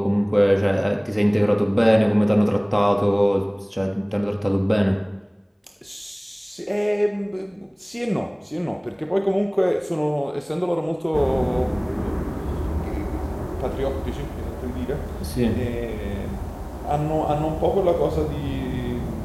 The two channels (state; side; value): identical; both; correlation 1.00